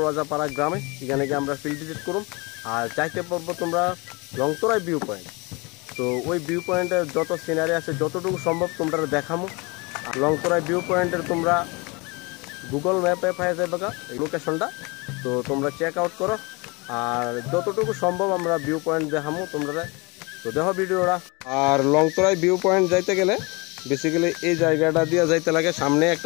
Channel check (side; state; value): right; quieter; 27.2 dB